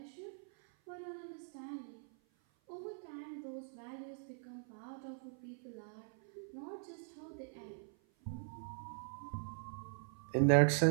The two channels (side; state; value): left; silent; 50 dB below the other